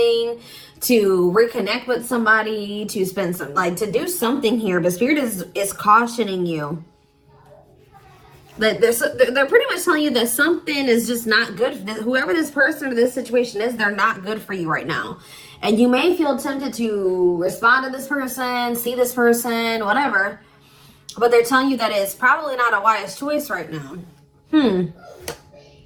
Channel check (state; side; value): identical; both; correlation 1.00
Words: to reconnect with somebody, to spend some, to do something here. But Spirit is cautioning you. They're pretty much telling you that something is just not good. Whoever this person or this situation is, they're not good for you right now. And you may feel tempted to respond to this person, see this person, whatever. But they're telling you that it's probably not a wise choice right now.